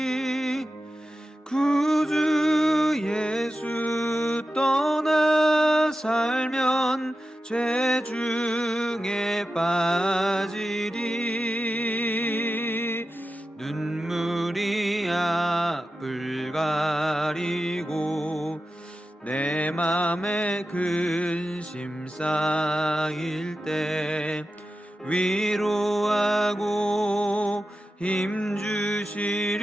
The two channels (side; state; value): both; normal; correlation 0.92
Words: 구주 예수 떠나 살면 죄 중에 빠지리. 눈물이 앞을 가리고 내 맘에 근심 쌓일 때 위로하고 힘주시리